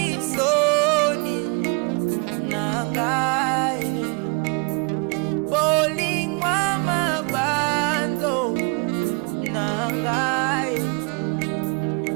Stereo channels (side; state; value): left; quieter; 34.0 dB